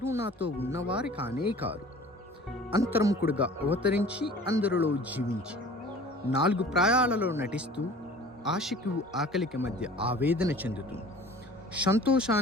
నాతో ఉన్నవారి కానే కారు. అంతర్ముఖుడుగా అవతరించి అందరిలో జీవించి 4 ప్రాయాలలో నటిస్తూ ఆశకు ఆకలికి మధ్య ఆవేదన చెందుతూ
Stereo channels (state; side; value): normal; both; correlation 0.45